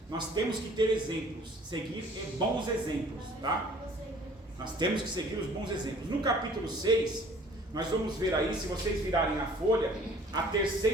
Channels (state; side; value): normal; both; correlation 0.53